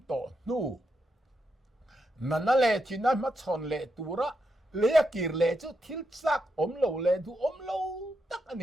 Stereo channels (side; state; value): both; normal; correlation 0.83